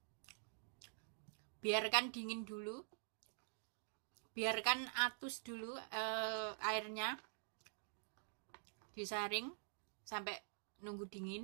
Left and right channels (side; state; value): left; silent; digital silence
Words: Biarkan dingin dulu. Biarkan atus dulu airnya. Disaring sampai nunggu